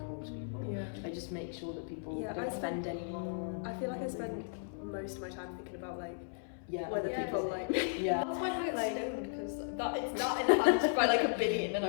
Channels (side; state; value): right; silent; 54 dB below the other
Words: to people. Yeah. I just make sure that people Yeah, don't offend anyone. I feel like I spend most of my time thinking about like Yeah. whether Yeah. people like Yeah. That's why I get Like- stoned because it's that enhanced by like a billion, and